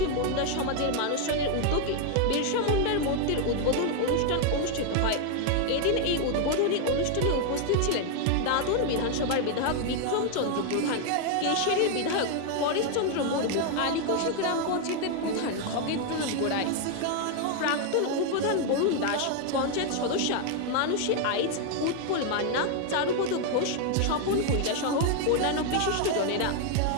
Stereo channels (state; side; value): different; both; correlation 0.00